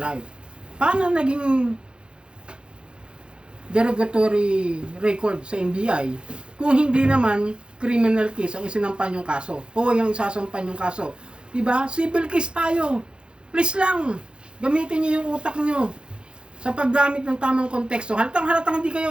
Paano naging derogatory record sa NBI kung hindi naman criminal case ang isinampan yung kaso o yung isasampan yung kaso? Diba? Civil case tayo. Please lang, gamitin niyo yung utak niyo sa paggamit ng tamang konteksto. Halatang hindi kayo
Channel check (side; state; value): left; late; 0.053 ms